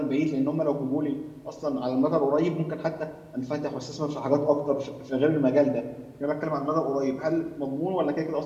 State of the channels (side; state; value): both; identical; correlation 1.00